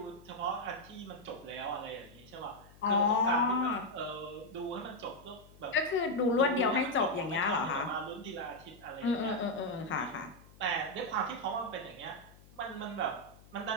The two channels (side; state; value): left; noise; hum, 23 dB below the sound